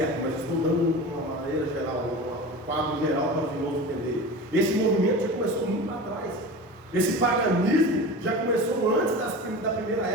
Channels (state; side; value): normal; both; correlation 0.32